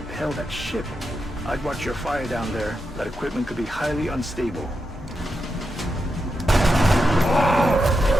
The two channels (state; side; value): normal; both; correlation 0.86